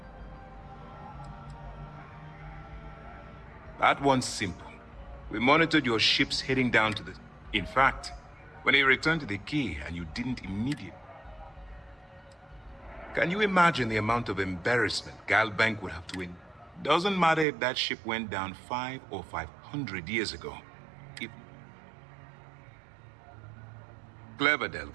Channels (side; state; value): left; drops out; at 17.4 s